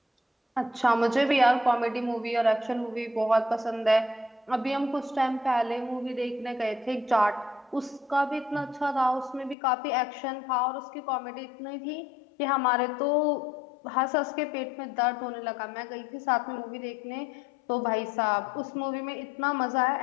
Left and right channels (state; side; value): drops out; right; at 9.6 s